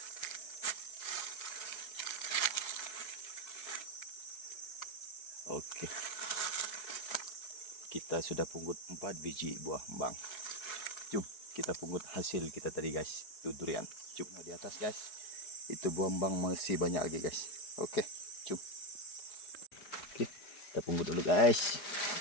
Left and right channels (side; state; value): right; late; 4.9 ms